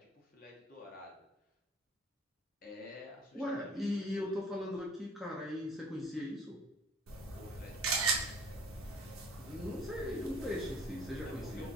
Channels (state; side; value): normal; both; correlation 0.52